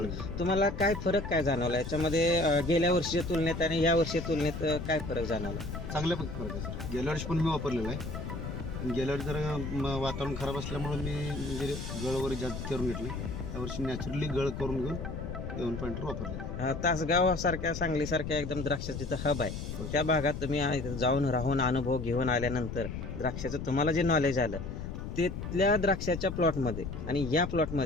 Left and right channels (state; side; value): noise; left; rumble, 6 dB below the sound